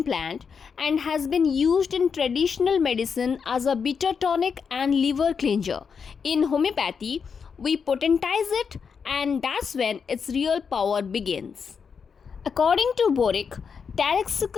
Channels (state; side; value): quieter; right; 6.1 dB